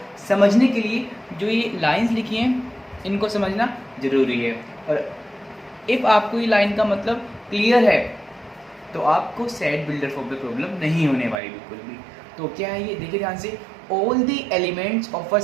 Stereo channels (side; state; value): left; drops out; at 11.4 s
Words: समझने के लिए जो ये लाइंस लिखी हैं इनको समझना जरूरी है। और इफ आपको ये लाइन का मतलब क्लियर है तो आपको सेट बिल्डर फॉर्म पे प्रॉब्लम नहीं होने वाली बिल्कुल भी। तो क्या है ये, देखिए ध्यान से। All the elements of a